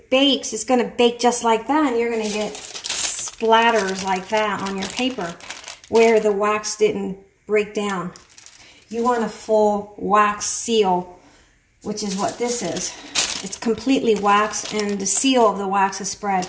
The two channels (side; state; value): both; identical; correlation 1.00